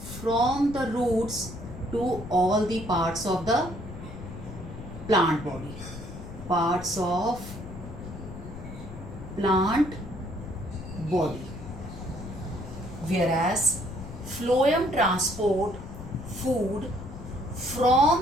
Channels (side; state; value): left; noise; rumble, 12 dB below the sound